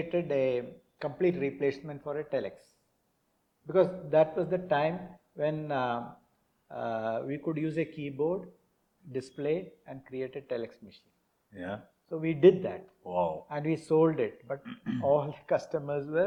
a complete replacement for a telex, because that was the time when we could use a keyboard, display, and create a telex machine. Yeah. So we did that. Wow. And we sold it, but all the customers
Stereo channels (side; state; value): both; identical; correlation 1.00